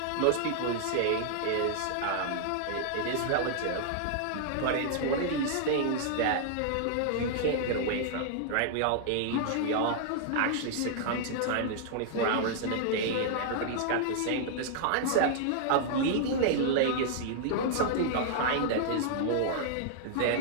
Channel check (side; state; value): both; different; correlation -0.01